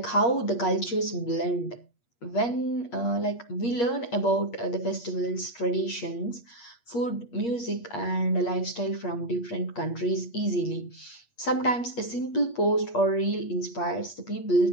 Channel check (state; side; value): late; right; 8.4 ms